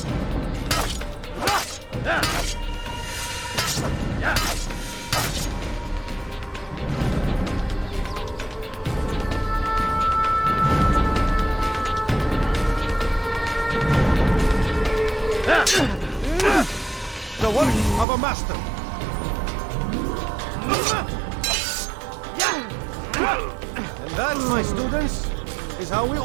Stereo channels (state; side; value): drops out; left; at 18.1 s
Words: my students, is how we